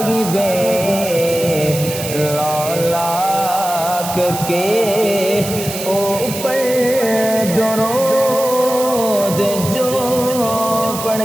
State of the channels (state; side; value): noise; right; hiss, 8 dB below the sound